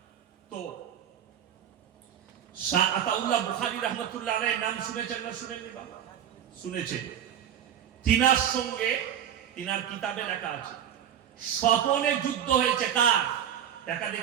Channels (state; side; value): quieter; left; 9.7 dB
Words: তো শাহ আতাউল্লাহ বুখারী রাহমাতুল্লাহ আলাইহি নাম শুনেছেন না শুনেননি বাবা? শুনেছেন। তিনার সঙ্গে, তিনার কিতাবে লেখা আছে স্বপনে যুদ্ধ হয়েছে। কার? দেখা